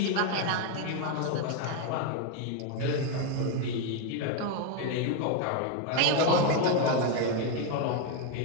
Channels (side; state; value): both; different; correlation 0.01